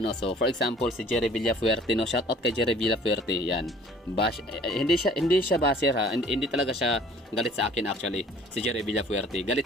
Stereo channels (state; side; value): normal; both; correlation 0.52